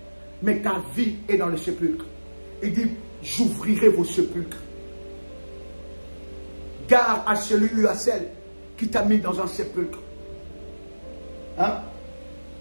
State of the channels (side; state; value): both; inverted; correlation -1.00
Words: Mais ta vie est dans le sépulcre. Il dit, j'ouvrirai vos sépulcres. Garde à celui ou à celle qui t'a mis dans un sépulcre. Hein?